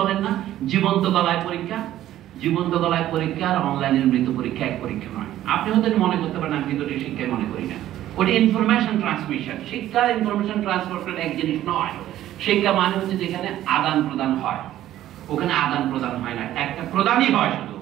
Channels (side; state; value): left; quieter; 13.1 dB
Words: না, জীবন্ত গলায় পরীক্ষা। জীবন্ত গলায় পরীক্ষা আর অনলাইনের মৃত পরীক্ষা এক পরীক্ষা নয়। আপনি হয়তো মনে করতে পারেন আমি কিন্তু শিক্ষায় মনে করি না, ওটা ইনফরমেশন ট্রান্সমিশন। শিক্ষার ইনফরমেশন ট্রান্সফার করা এক জিনিস নয়। শিক্ষা মানে হচ্ছে যেখানে আদান প্রদান হয়, ওখানে আদান প্রদান হয় না, একটা প্রদানই হয় শুধু,